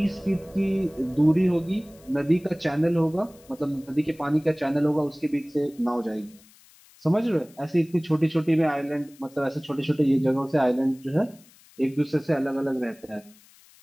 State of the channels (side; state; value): left; noise; hiss, 27 dB below the sound